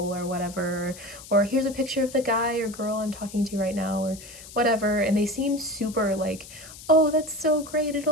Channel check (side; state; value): left; noise; hiss, 16 dB below the sound